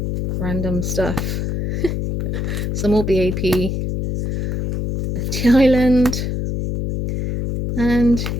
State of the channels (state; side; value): noise; left; hum, 1 dB below the sound